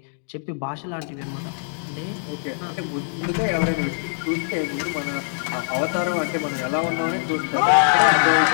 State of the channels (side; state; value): right; silent; digital silence